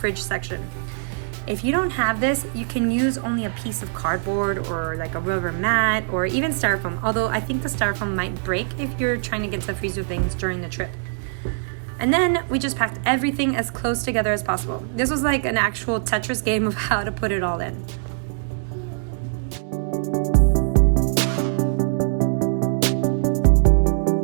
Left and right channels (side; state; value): left; silent; digital silence